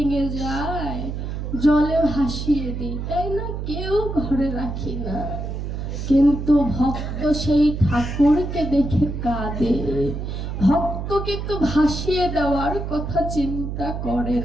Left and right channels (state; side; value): noise; right; hum, 5 dB below the sound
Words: যায় জলে ভাসিয়ে দিই, তাই না, কেউ ঘরে রাখি না। কিন্তু ভক্ত সেই ঠাকুরকে দেখে কাঁদে, ভক্ত কিন্তু ভাসিয়ে দেওয়ার কথা চিন্তা করে